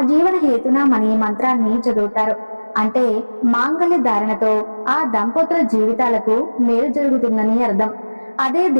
జీవన హేతునామని మంత్రాన్ని చదువుతారు. అంటే మాంగళ్య ధారణతో ఆ దంపతుల జీవితాలకు మేలు జరుగుతుందని అర్థం. అదే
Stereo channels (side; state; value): both; inverted; correlation -1.00